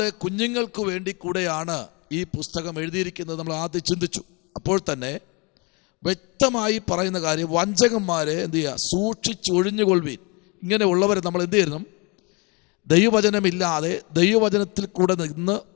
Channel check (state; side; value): quieter; right; 29.6 dB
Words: കുഞ്ഞുങ്ങൾക്ക് വേണ്ടി കൂടെയാണ് ഈ പുസ്തകം എഴുതിയിരിക്കുന്നത്. നമ്മൾ ആദ്യം ചിന്തിച്ചു. അപ്പോൾ തന്നെ വ്യക്തമായി പറയുന്ന കാര്യം, വഞ്ചകന്മാരെ എന്ത് ചെയ്യുക? സൂക്ഷിച്ച് ഒഴിഞ്ഞുകൊള്ളുവീൻ. ഇങ്ങനെ ഉള്ളവരെ നമ്മൾ എന്ത് ചെയ്യണം? ദൈവവചനമില്ലാതെ ദൈവവചനത്തിൽ കൂടെ നിന്ന്